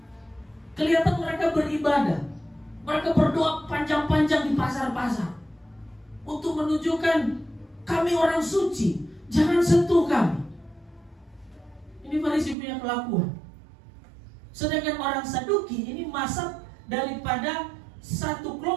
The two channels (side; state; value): left; drops out; at 12.6 s